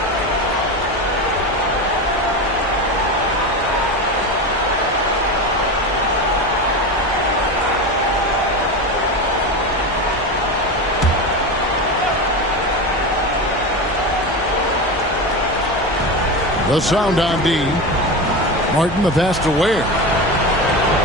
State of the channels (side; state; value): both; normal; correlation 0.22